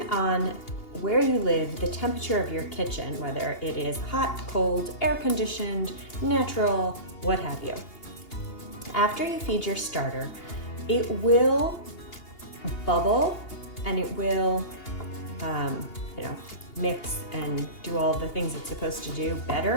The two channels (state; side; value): late; right; 2.8 ms